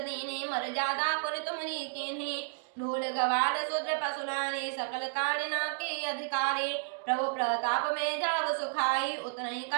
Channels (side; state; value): left; silent; digital silence